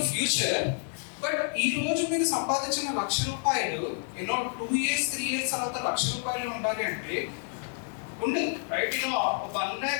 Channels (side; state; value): right; silent; 59 dB below the other